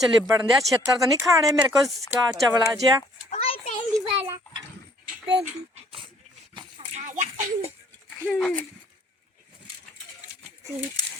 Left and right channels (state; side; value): normal; both; correlation 0.60